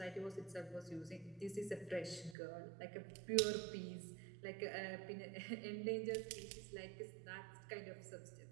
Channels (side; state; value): left; drops out; at 2.4 s